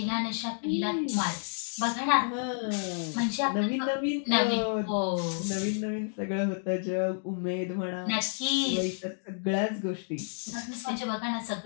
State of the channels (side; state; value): right; silent; digital silence